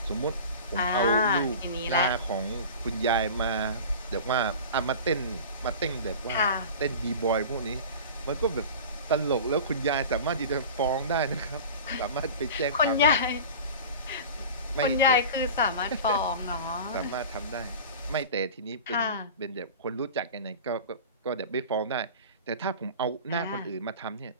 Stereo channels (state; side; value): inverted; both; correlation -0.35